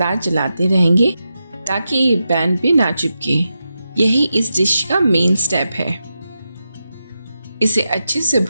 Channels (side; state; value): both; inverted; correlation -0.88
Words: चलाते रहेंगे ताकि ये पैन पे ना चिपके। यही इस डिश का मेन स्टेप है। इसे अच्छे से